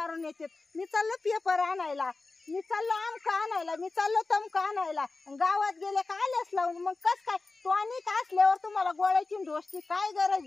येते. मी चाललो पेपर आणायला. मी चाललो आमका आणायला. मी चाललो तमका आणायला. गावात गेले का आलेच लावून. मग कस काय तो आणि का असल्यावर तुम्हाला गोळ्याची ढोसची काय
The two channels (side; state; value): right; quieter; 3.6 dB